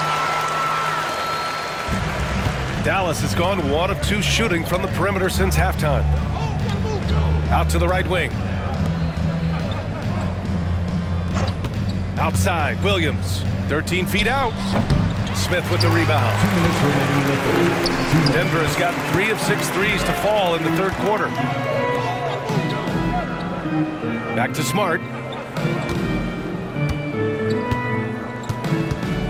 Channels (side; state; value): both; identical; correlation 1.00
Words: Dallas has gone 1 of 2 shooting from the perimeter since halftime. Out to the right wing. Outside, Williams. 13 feet out. Smith with the rebound. Denver has gotten 3 of 6 threes to fall in the 3rd quarter. Back to Smart.